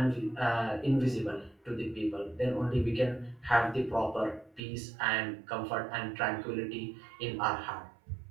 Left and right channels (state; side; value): drops out; left; at 4.6 s